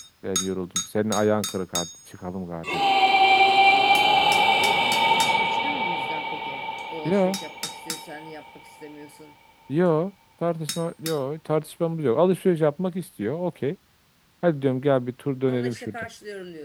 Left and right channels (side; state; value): both; identical; correlation 1.00